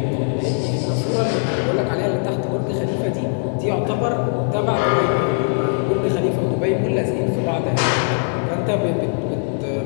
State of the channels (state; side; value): silent; right; 56 dB below the other